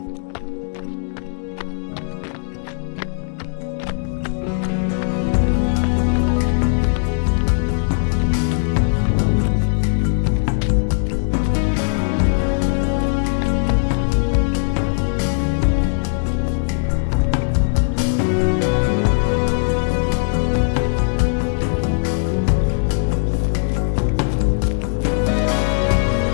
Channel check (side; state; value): right; silent; digital silence